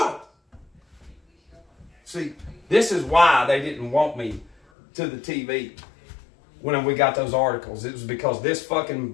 it! See, this is why they didn't want me to the TV when we got those articles. It was because this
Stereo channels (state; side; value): drops out; right; at 4.5 s